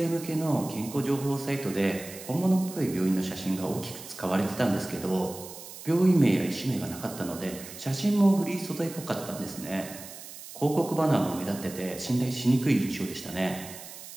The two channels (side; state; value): right; noise; hiss, 14 dB below the sound